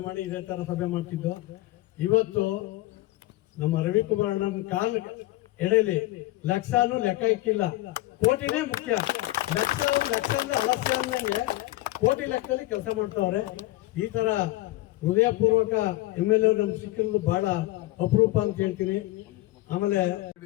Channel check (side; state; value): right; quieter; 17.9 dB